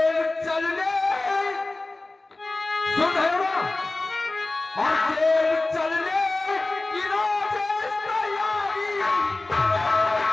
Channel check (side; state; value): right; quieter; 3.1 dB